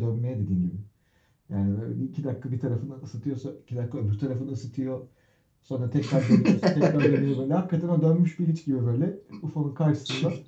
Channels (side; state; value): both; identical; correlation 1.00